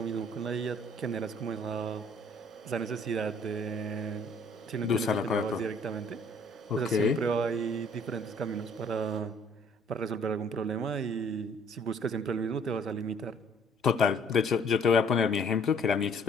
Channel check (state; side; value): normal; both; correlation 0.59